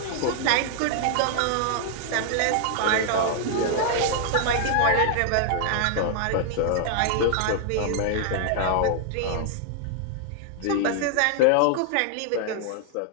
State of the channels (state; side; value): different; both; correlation 0.00